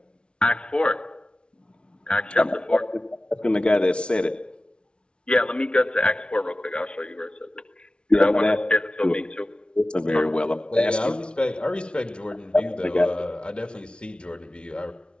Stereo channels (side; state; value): right; late; 0.057 ms